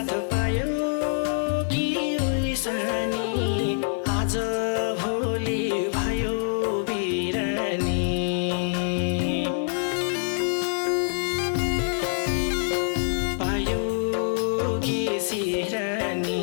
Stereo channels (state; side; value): silent; right; 57 dB below the other